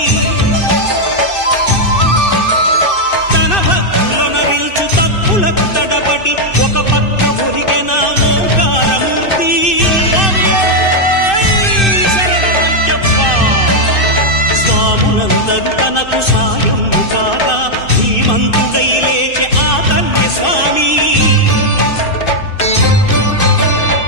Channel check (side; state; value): right; late; 2.6 ms